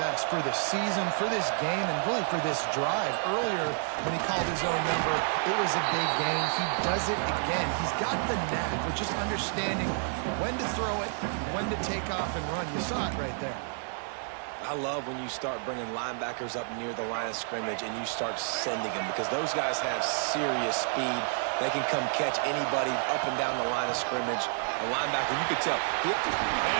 for this season, for this game, and really for this drive. Earlier, when he called his own number, it was a big gain. He does it again. He's got the knack for just understanding when to throw it, when to take off and run. You saw it right there. I love when you start bringing linebackers up near the line of scrimmage and you start sending them because those guys have serious speed. They can come catch anybody up and down the line of scrimmage. A linebacker, you could tell.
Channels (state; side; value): silent; left; 58 dB below the other